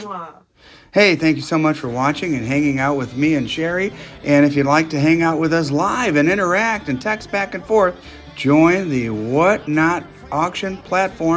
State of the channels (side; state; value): both; identical; correlation 1.00